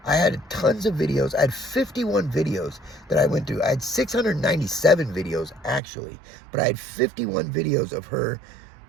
I had tons of videos. I had 51 videos that I went through. I had 697 videos, actually. But I had 51 videos of her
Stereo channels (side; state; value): left; drops out; at 5.8 s